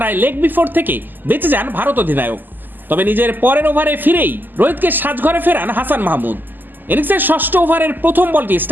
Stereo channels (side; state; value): left; late; 0.089 ms